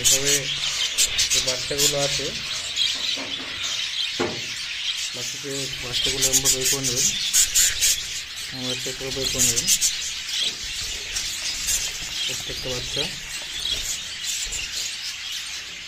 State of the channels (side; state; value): both; identical; correlation 1.00